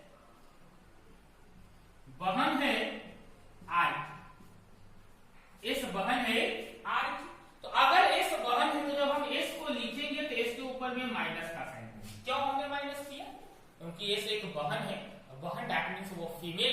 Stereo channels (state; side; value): identical; both; correlation 1.00